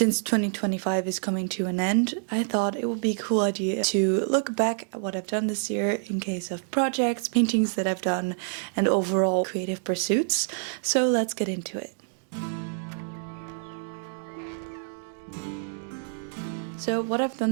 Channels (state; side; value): silent; left; digital silence